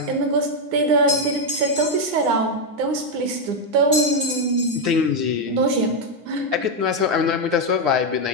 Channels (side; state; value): left; late; 9.7 ms